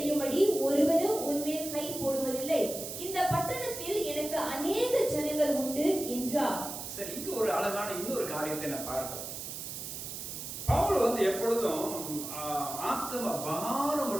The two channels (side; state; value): right; noise; hiss, 7 dB below the sound